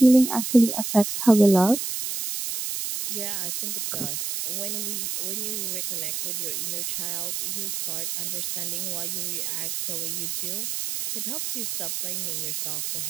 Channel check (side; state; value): right; noise; hiss, 3 dB below the sound